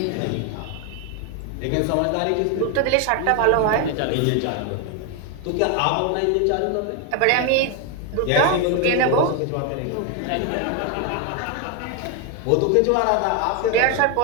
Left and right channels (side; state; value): both; different; correlation 0.01